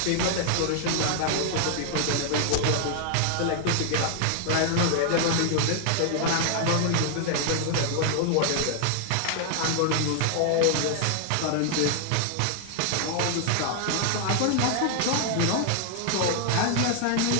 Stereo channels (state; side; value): different; both; correlation 0.00